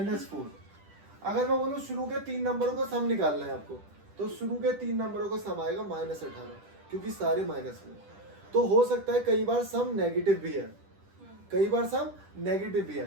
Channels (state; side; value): late; left; 10 ms